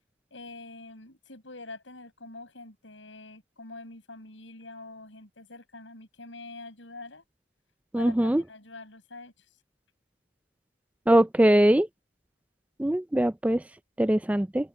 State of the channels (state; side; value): normal; both; correlation 0.94